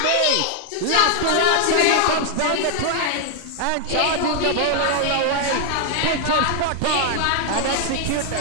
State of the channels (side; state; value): both; different; correlation 0.00